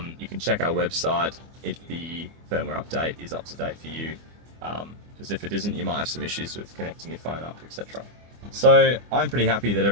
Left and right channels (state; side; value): late; left; 24 ms